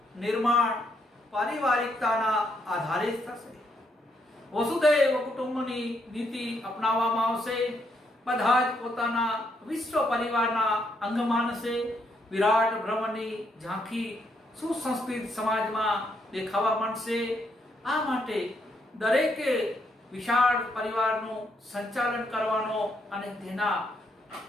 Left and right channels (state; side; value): normal; both; correlation 0.75